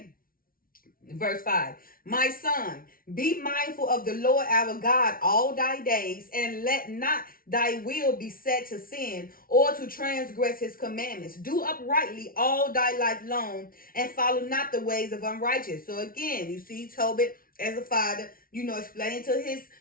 Verse 5. My son, be mindful of the Lord our God all thy days, and let not thy will be set to sin or to transgress his commandments. Do uprightly all thy life long, and follow not the ways of unrighteous. So again, you see Tobit as a father, explaining to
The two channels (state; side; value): late; right; 0.42 ms